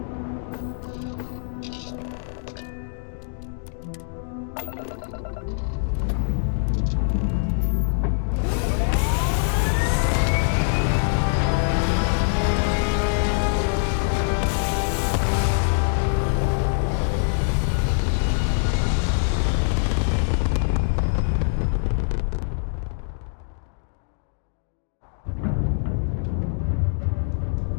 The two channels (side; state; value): right; silent; digital silence